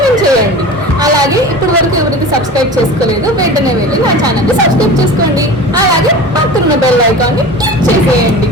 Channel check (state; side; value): normal; both; correlation 0.35